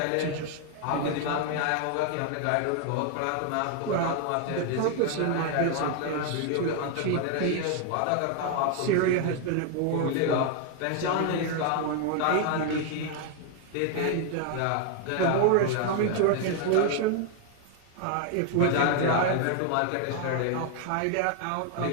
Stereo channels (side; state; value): both; different; correlation 0.00